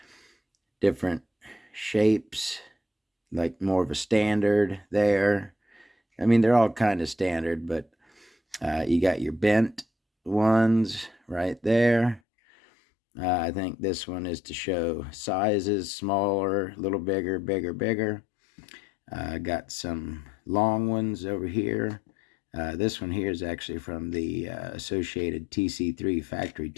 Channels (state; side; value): drops out; right; at 12.2 s